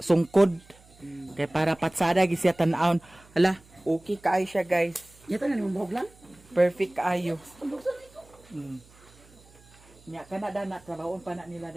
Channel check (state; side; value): noise; right; hum, 26 dB below the sound